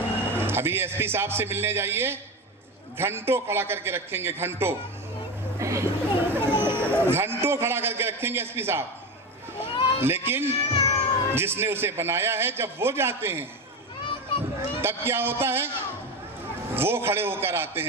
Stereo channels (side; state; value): both; normal; correlation 0.21